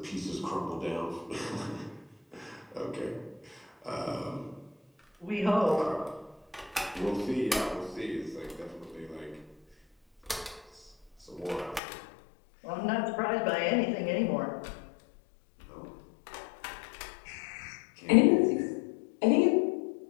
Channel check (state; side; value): drops out; right; at 11.8 s